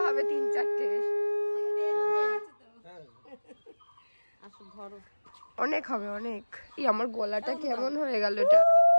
হবে 3-4টে। অনেক হবে অনেক। আমার গলাটা কেমন হয়ে গেল এটা।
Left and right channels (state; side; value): inverted; both; correlation -1.00